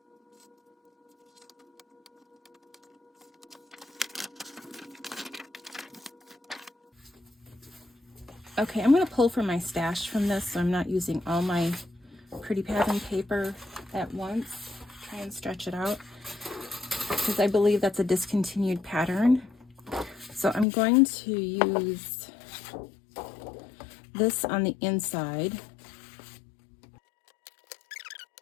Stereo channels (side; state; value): right; drops out; at 20.7 s